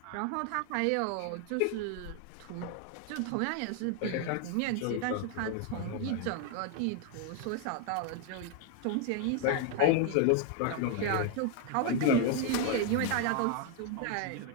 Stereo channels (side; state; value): both; different; correlation 0.01